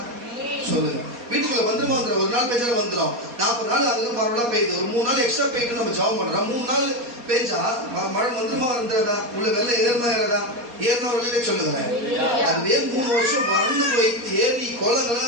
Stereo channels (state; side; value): late; left; 4.2 ms